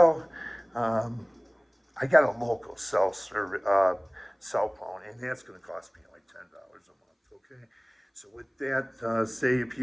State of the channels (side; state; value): both; identical; correlation 1.00